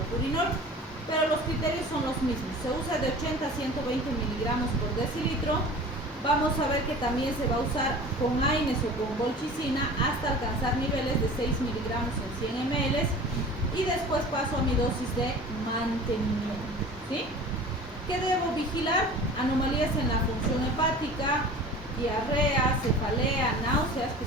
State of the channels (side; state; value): both; normal; correlation 0.40